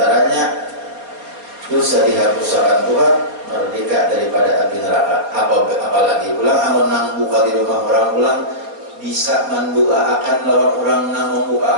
dosa dihapuskan Tuhan, merdeka daripada api neraka. Apalagi pulang amun nang buka di rumah orang pulang bisa mendoakan lawan orang nang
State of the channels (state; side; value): late; left; 4.3 ms